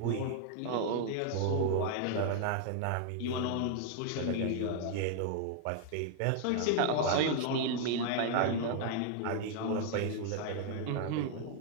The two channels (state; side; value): different; both; correlation 0.00